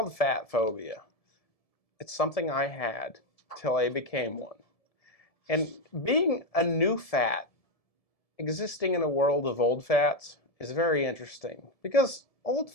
fat phobia. It's something I had till I became one. And being a new fat, existing in a world of old fats, is very interesting. Because old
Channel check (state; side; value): late; right; 1.7 ms